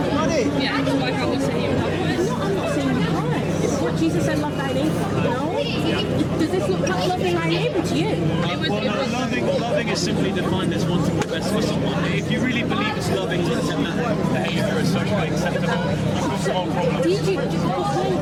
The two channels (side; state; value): both; identical; correlation 1.00